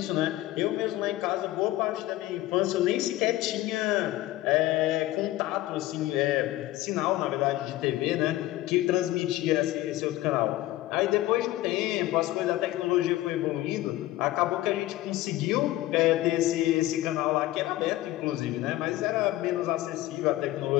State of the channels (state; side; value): quieter; right; 16.2 dB